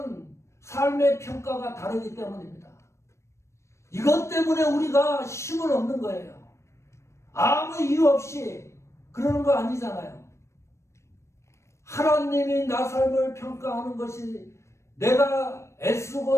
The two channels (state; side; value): late; right; 0.13 ms